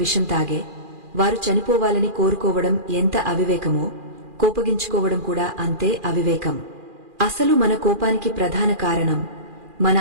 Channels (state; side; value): late; left; 2.4 ms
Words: తాగే, వారు చనిపోవాలని కోరుకోవడం ఎంత అవివేకమో, కోపగించుకోవడం కూడా అంతే అవివేకం. అసలు మన కోపానికి ప్రధాన కారణం మన